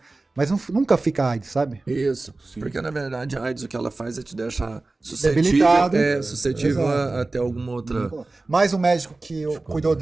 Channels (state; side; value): quieter; left; 3.2 dB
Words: Mas nunca fica AIDS, sabe? Isso. Sim. Porque na verdade a AIDS o que ela faz é te deixar Debilitado. suscetível a ter alguma outra. Mas o médico que cuidou